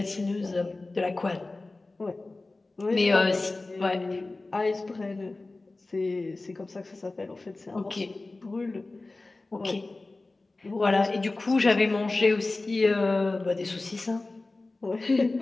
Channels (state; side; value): quieter; right; 3.2 dB